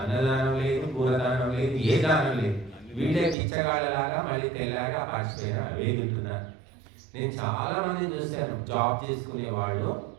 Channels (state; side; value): drops out; left; at 3.4 s